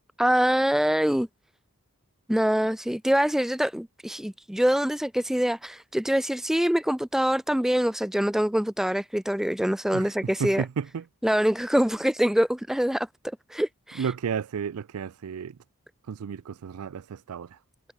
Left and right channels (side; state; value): both; normal; correlation 0.94